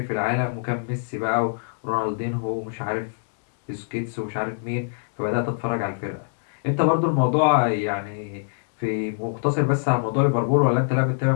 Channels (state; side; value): silent; right; digital silence